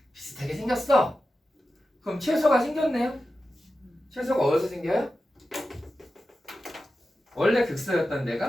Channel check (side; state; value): both; normal; correlation 0.92